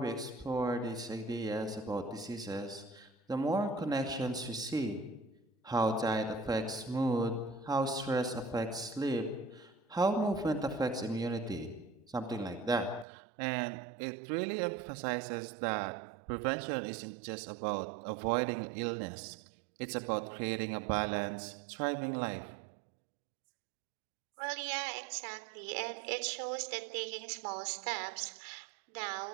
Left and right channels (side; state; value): left; drops out; at 13.1 s